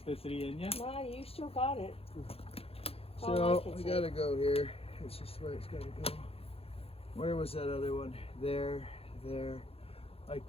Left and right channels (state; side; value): late; right; 0.28 ms